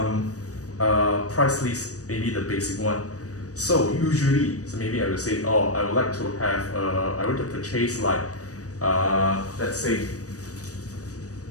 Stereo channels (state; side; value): late; right; 0.66 ms